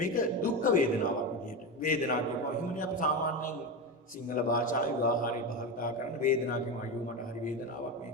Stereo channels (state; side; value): normal; both; correlation 0.18